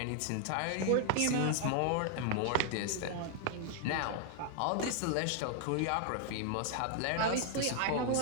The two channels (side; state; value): both; different; correlation 0.00